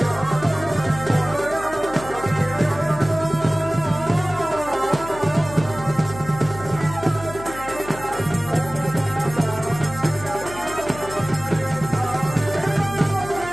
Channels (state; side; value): noise; left; hum, 14 dB below the sound